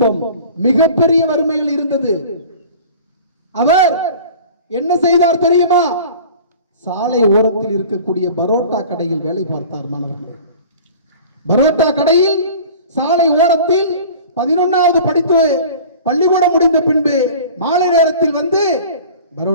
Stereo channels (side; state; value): both; inverted; correlation -0.41